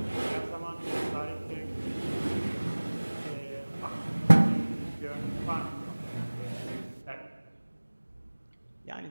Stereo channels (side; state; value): both; inverted; correlation -1.00